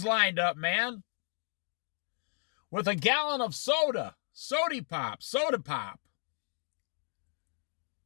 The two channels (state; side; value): silent; right; 55 dB below the other